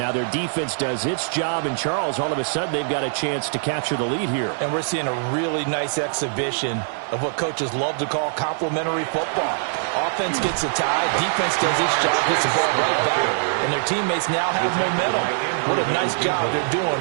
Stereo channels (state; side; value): silent; left; digital silence